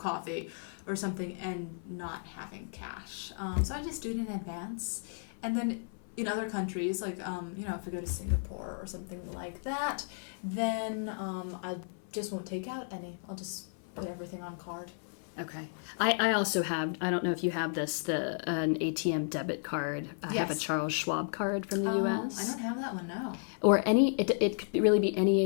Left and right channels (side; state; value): right; silent; 55 dB below the other